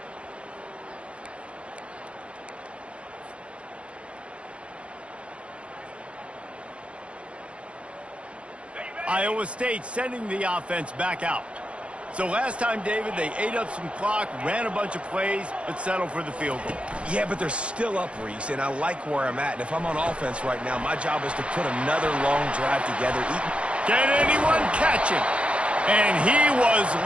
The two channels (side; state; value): left; late; 0.060 ms